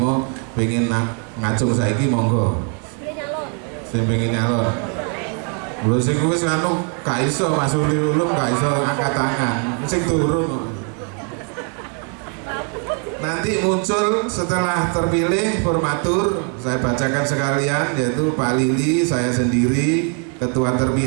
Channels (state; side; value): quieter; left; 39.5 dB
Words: pengen ngacung saiki monggo. Sing pengen nyalon. Lho sing wis anu gak iso Mas Zuhri Ulum gak iso angkat tangan. Sing turun. Nanti muncul setelah terpilih formatur, saya bacakan sekalian, yaitu Pak Lili, saya sendiri, ketua